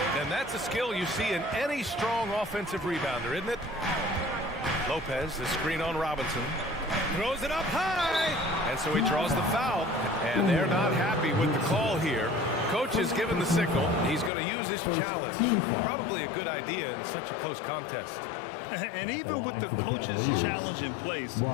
And that's a skill you see in any strong offensive rebounder, isn't it? Lopez, the screen on Robinson. Throws it up high. And so he draws the foul. And they're not happy with the call here. Coach has given the signal. He's going to use his challenge. Probably a good idea in such a close contest. And even with the coach's challenge in place,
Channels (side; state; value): right; drops out; at 14.3 s